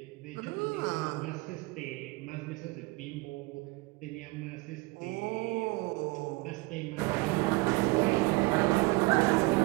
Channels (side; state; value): left; quieter; 24.7 dB